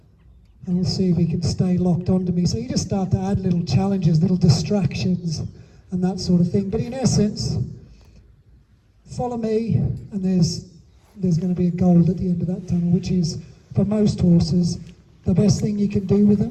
And we'll see if he can stay locked onto me. So you just start to add little challenges, little distractions, and that sort of thing. But in essence, follow me, and there's going to be a goal at the end of that tunnel, which is, for most horses, the best thing you can do with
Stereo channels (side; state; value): both; identical; correlation 1.00